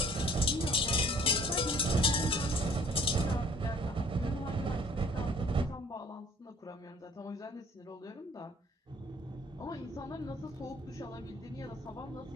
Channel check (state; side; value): normal; both; correlation 0.55